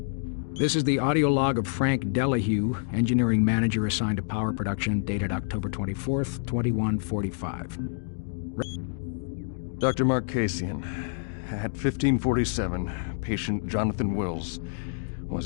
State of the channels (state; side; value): silent; right; digital silence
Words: This is the audio log of Frank Delahue, engineering manager assigned to power production, dated October 24th, 2145. Dr. Mark Kasian, at 1547, patient Jonathan Wills